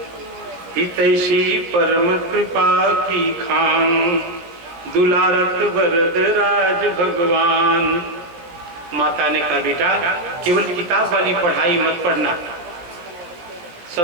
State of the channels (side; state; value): left; late; 17 ms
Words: हितैषी परम कृपा की खान, दुलारत वरद राज भगवान। माता ने कहा बेटा केवल किताब वाली पढ़ाई मत पढ़ना,